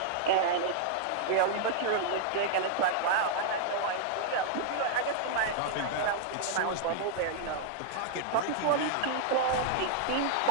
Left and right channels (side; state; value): both; different; correlation -0.01